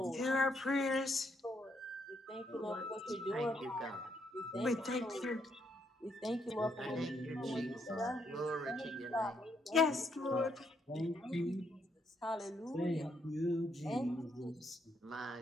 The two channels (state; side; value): normal; both; correlation 0.74